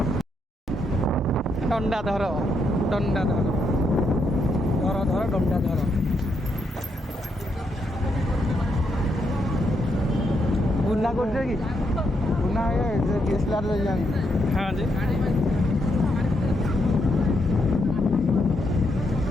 ଡଣ୍ଡା ଧର, ଡଣ୍ଡା ଧର, ଧର ଧର ଡଣ୍ଡା ଧର। ଗୁନା କରୁଛ କି? ଗୁନା ଡିଏସ୍ଏଲଆର ଜାଣି। ହଁ ଯେ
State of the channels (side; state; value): both; normal; correlation 0.79